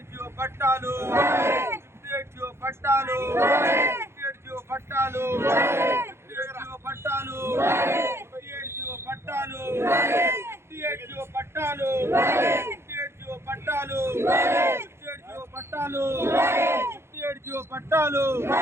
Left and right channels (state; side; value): late; left; 0.12 ms